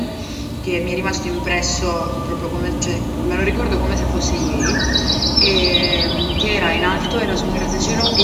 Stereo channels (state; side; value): identical; both; correlation 1.00